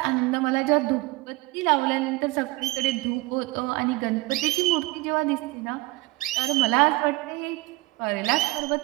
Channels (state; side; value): quieter; left; 21.2 dB